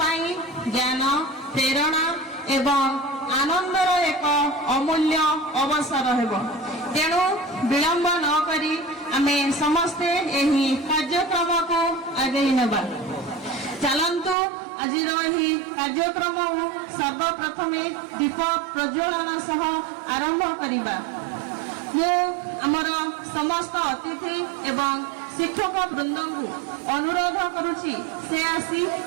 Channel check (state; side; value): drops out; left; at 14.4 s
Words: ज्ञान प्रेरणा एवं आनंदर एक अमूल्य अवसर हेबो। तेणु विलंब न करी आमे समस्ते एही कार्यक्रम को आगे नेबा। चलंतु आजिर एही कार्यक्रम सर्वप्रथमे दीप प्रज्वलन सह आरंभ करिबा। मु आमर समस्त अतिथि एवं शिक्षक वृंद को अनुरोध करुछि से आसी